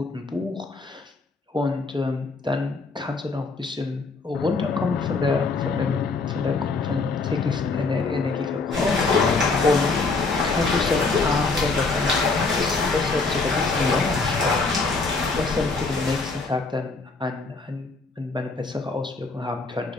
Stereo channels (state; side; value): quieter; right; 3.9 dB